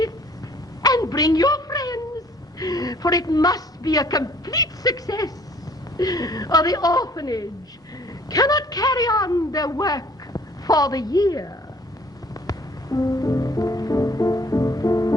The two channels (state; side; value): normal; both; correlation 0.57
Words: and bring your friends, for it must be a complete success, or the orphanage cannot carry on their work for the year.